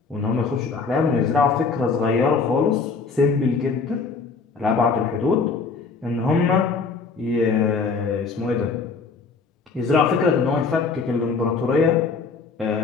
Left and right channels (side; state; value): right; quieter; 4.7 dB